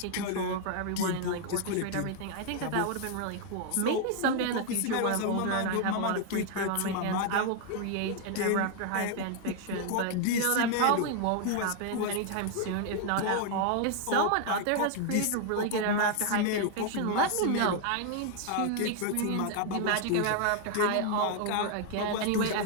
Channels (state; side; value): different; both; correlation 0.00